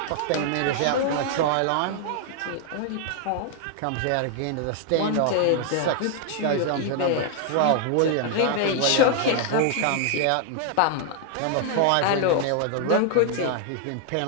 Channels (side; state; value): both; different; correlation 0.00